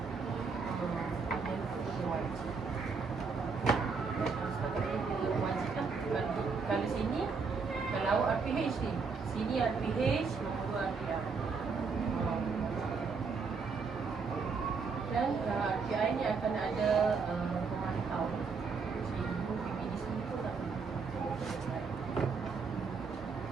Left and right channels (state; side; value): quieter; left; 5.0 dB